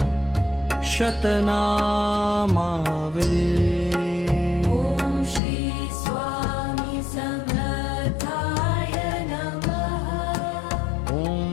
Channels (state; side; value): drops out; right; at 5.4 s